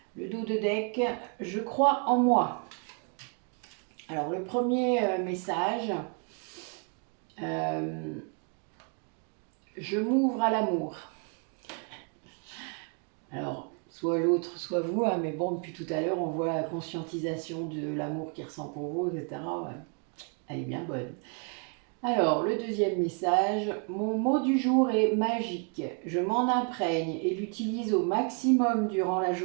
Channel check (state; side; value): quieter; left; 39.4 dB